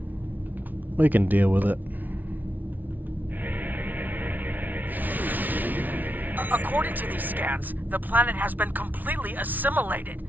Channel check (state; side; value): late; left; 0.080 ms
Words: We can deal with it. According to these scans, the planet has been completely assimilated.